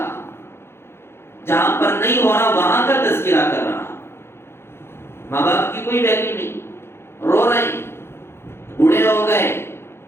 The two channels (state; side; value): late; right; 0.12 ms